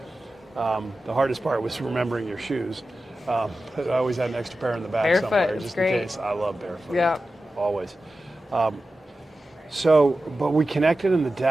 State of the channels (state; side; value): normal; both; correlation 0.94